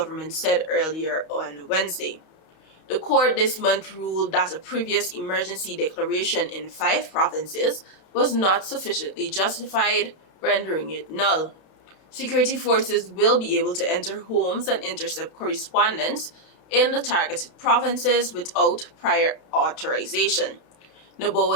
said earlier on Wednesday. The court this month ruled that a previous emergency declaration in 5 provinces was not sufficiently justified, rendering it null. Security forces will be able to enter homes and intercept correspondence in the targeted provinces without prior authorization,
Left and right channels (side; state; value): right; late; 31 ms